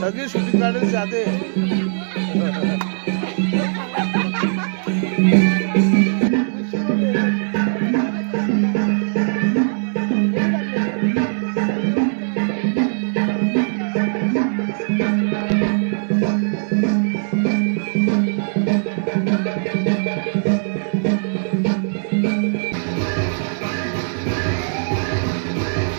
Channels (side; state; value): left; silent; digital silence